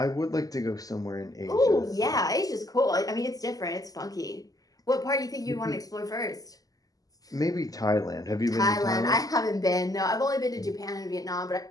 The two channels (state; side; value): late; right; 0.17 ms